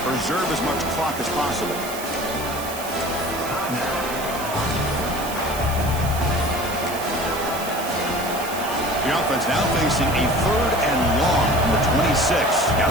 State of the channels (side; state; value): right; noise; hiss, 11 dB below the sound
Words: preserve as much clock as possible. The offense now facing a 3rd and long from the 26. Got